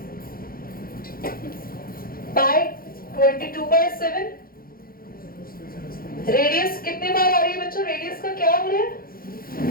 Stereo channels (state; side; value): late; right; 0.42 ms